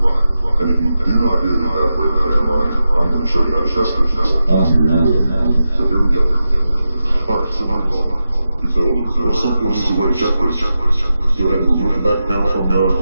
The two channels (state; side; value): inverted; both; correlation -0.91